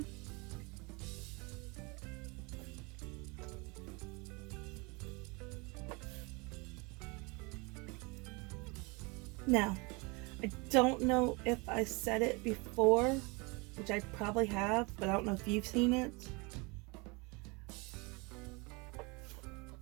Now, I don't know if I said it before, which I probably have, but I don't know if you've seen it.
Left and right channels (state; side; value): quieter; left; 28.1 dB